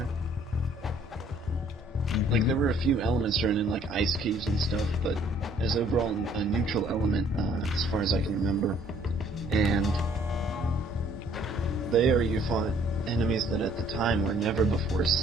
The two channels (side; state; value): both; normal; correlation 0.60